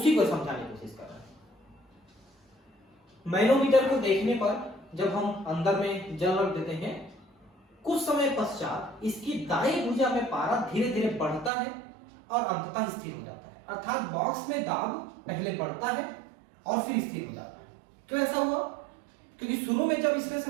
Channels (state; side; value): drops out; left; at 11.5 s